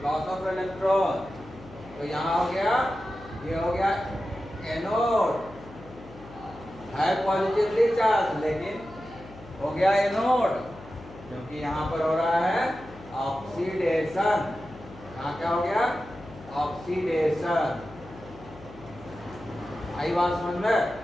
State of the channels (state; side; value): noise; left; hum, 18 dB below the sound